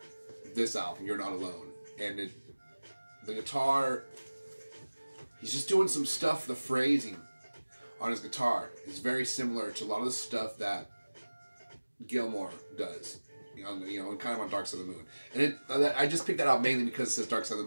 this album, You're Not Alone. And the guitar, he's just doing some stuff, the phrasing on his guitar is very similar to a lot of the stuff that Gilmour does, you know, and kind of on Dark Side of the Moon. And I just picked that out mainly because it says Dark Side of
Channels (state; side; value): inverted; both; correlation -1.00